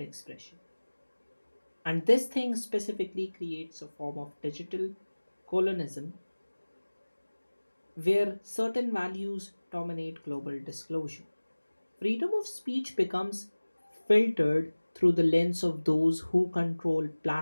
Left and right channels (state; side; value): inverted; both; correlation -1.00